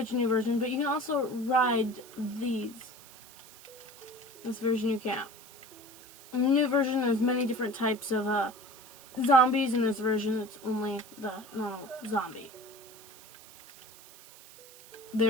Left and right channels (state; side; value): noise; right; hiss, 20 dB below the sound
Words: new version, but you can also ride these. This version you can't. In the new version, there's many different types of zombies. In this version, it's only the normal zombie.